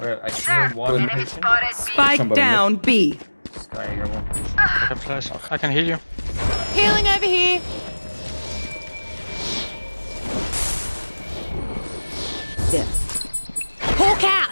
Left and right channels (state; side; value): inverted; both; correlation -1.00